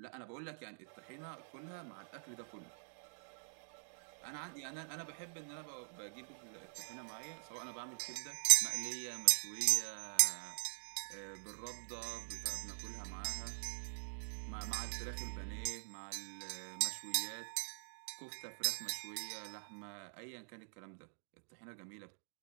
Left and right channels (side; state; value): left; silent; digital silence